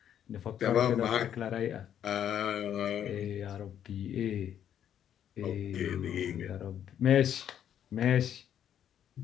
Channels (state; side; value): quieter; right; 9.7 dB